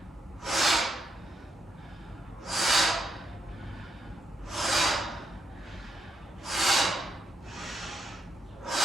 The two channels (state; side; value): normal; both; correlation 0.80